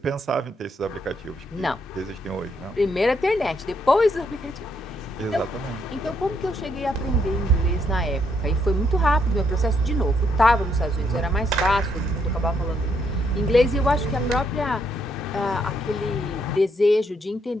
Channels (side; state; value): both; normal; correlation 0.74